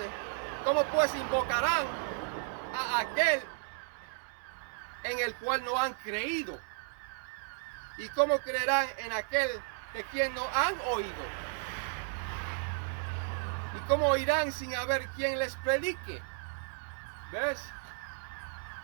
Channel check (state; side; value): silent; left; digital silence